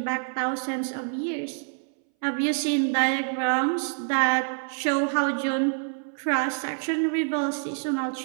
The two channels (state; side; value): silent; left; 61 dB below the other